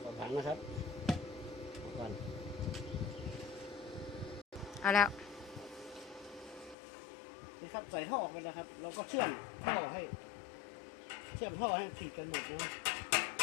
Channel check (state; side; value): drops out; right; at 6.8 s